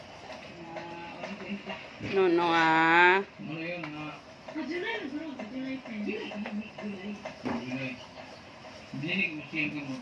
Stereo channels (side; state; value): both; identical; correlation 1.00